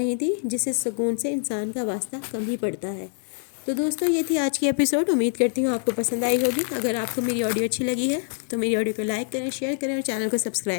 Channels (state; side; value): silent; right; 56 dB below the other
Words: تھی جسے سکون سے انسان کا واسطہ کم ہی پڑتا ہے۔ تو دوستو یہ تھی آج کی ایپیسوڈ، امید کرتی ہوں آپ کو پسند آئی ہوگی۔ اگر آپ کو میری آڈیو اچھی لگی ہے تو میری آڈیو کو لائک کریں، شیئر کریں اور چینل کو